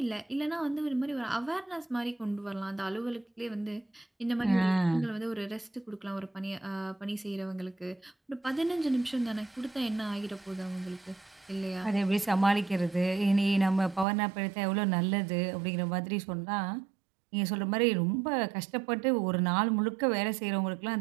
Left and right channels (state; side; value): drops out; left; at 14.1 s